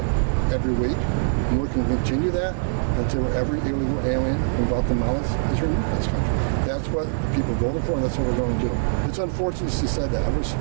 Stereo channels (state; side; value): silent; left; digital silence